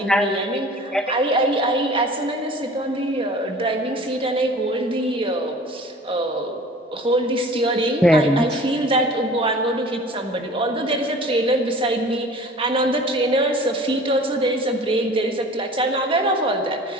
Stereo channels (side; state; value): both; normal; correlation 0.44